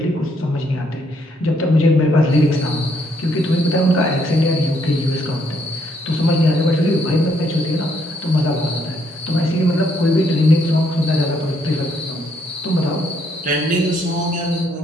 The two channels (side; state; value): both; normal; correlation 0.71